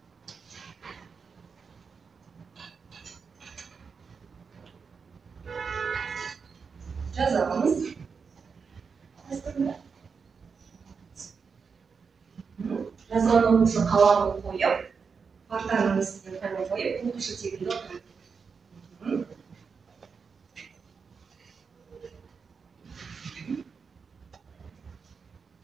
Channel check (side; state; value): left; quieter; 5.6 dB